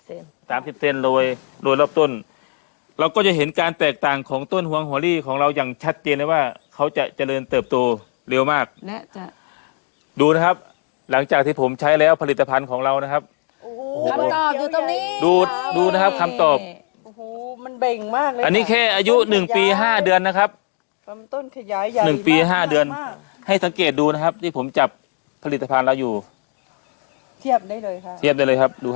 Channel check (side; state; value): right; quieter; 39.7 dB